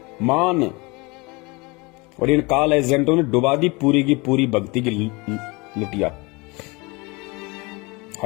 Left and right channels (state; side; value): quieter; right; 26.2 dB